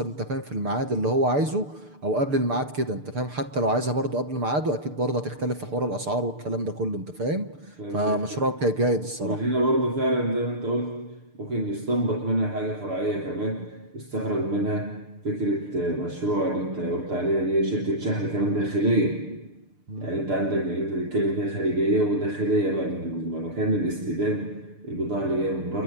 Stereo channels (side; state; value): left; late; 6.7 ms